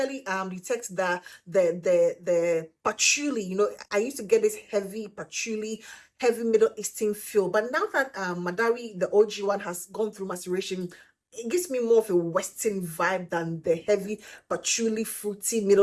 patchouli. You know, I used to get this heavy patchouli, heavy Middle Eastern feel, but now that Madawi, the OG one, has gone through maceration, it gives me more of a Western vibe than the heavy patchouli, fruity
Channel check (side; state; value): both; identical; correlation 1.00